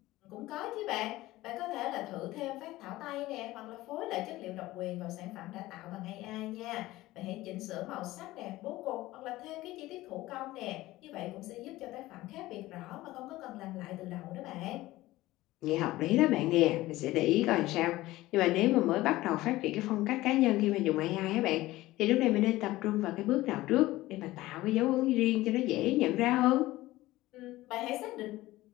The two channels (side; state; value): right; quieter; 17.5 dB